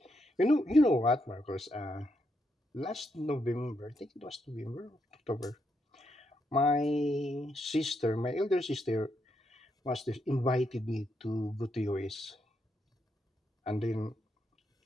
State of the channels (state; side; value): normal; both; correlation 0.79